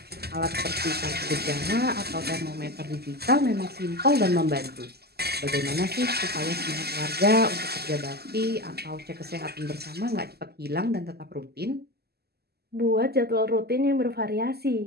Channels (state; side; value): late; left; 0.46 ms